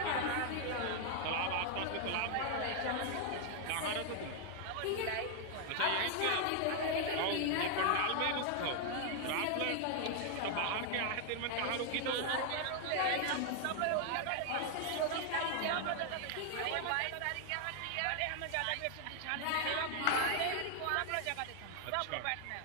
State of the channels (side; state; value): both; different; correlation 0.00